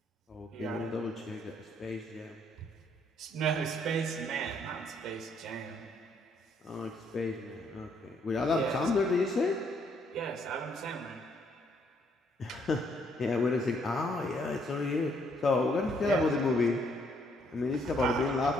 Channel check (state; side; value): normal; both; correlation 0.69